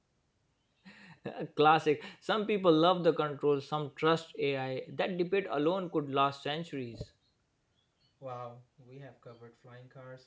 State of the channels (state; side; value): identical; both; correlation 1.00